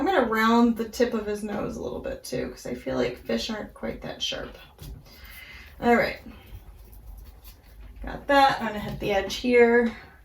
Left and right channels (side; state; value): both; identical; correlation 1.00